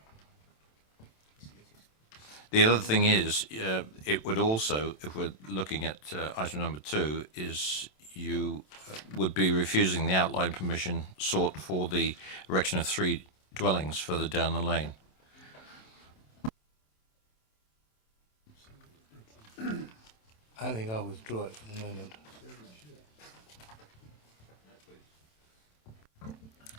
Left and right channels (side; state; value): right; late; 27 ms